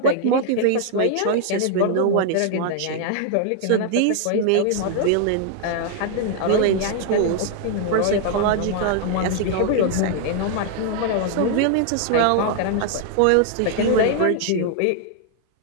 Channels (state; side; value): different; both; correlation 0.00